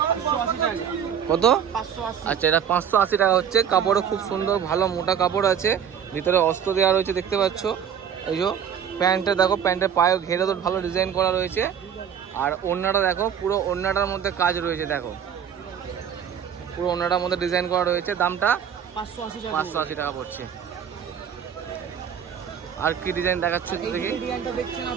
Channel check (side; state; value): left; quieter; 8.2 dB